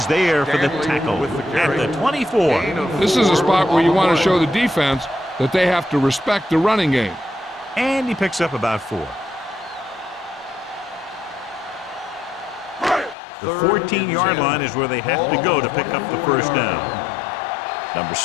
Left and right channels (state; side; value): drops out; right; at 13.2 s